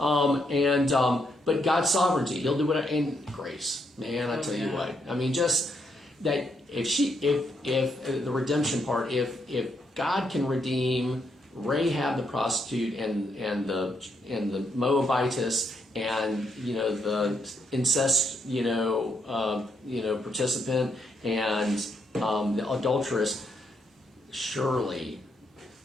God's sovereignty, He'll do whatever, and grace. Man, I tell you what. I mean, just that if the redemption part, if God can redeem Rahab the prostitute and the Moabitess and the incest participant and the adulteress, surely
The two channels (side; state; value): both; normal; correlation 0.77